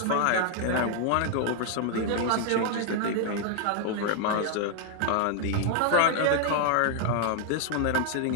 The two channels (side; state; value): both; different; correlation 0.00